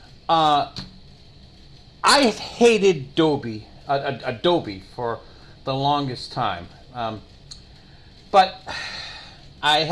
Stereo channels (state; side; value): identical; both; correlation 1.00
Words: I hated Adobe for the longest time. But I